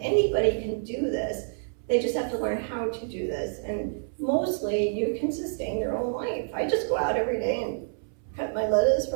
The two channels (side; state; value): left; silent; 60 dB below the other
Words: can do this. They just have to learn how to do this. And mostly you can sustain your own life. I just go out every day and cut my lettuce